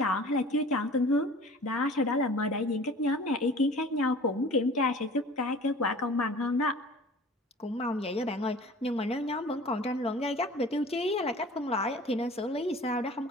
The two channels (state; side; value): normal; both; correlation 0.44